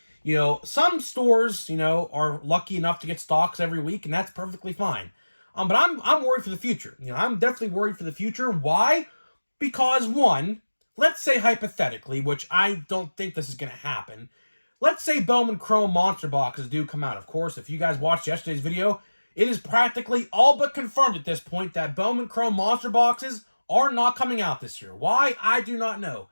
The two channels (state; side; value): inverted; both; correlation -1.00